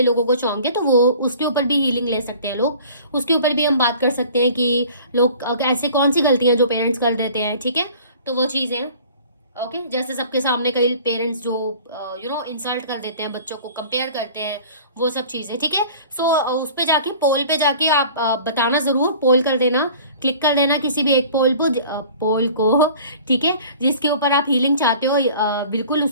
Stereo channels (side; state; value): both; inverted; correlation -0.46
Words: लोगों को शौक है, तो वो उसके ऊपर भी हीलिंग ले सकते हैं लोग, उसके ऊपर भी हम बात कर सकते हैं कि लोग ऐसे कौन सी गलतियां जो पेरेंट्स कर देते हैं, ठीक है। तो वो चीज़ें, ओके, जैसे सबके सामने कई पेरेंट्स जो इंसल्ट कर देते हैं, बच्चों को कंपेयर करते हैं, वो सब चीजें, ठीक है। सो उस पे जाके पोल पे जाके आप बताना जरूर, पोल कर देना, क्लिक कर देना किसी भी एक पोल को, ठीक है, जिसके ऊपर आप हीलिंग चाहते हो, बिल्कुल